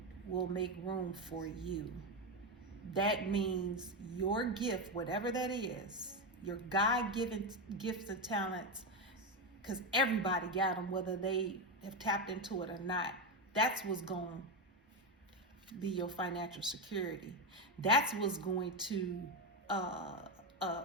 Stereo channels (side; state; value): both; normal; correlation 0.11